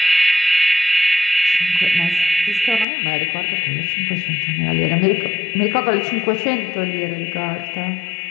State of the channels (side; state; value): right; drops out; at 2.9 s